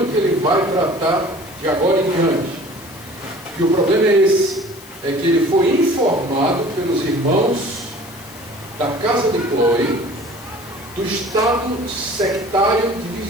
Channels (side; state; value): left; noise; hiss, 20 dB below the sound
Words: que ele vai tratar de agora em diante. E o problema é esse, é que ele foi informado pelos irmãos da casa de Cloe do estado sectário